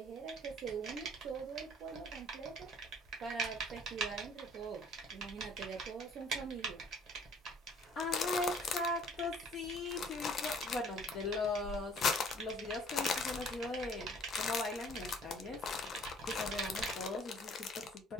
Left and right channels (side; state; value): both; normal; correlation 0.56